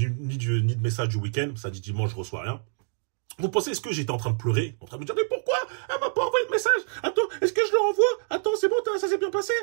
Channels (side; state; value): left; silent; digital silence